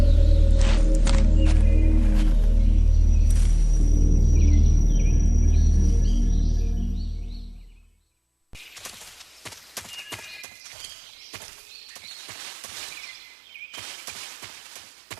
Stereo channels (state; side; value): drops out; left; at 10.5 s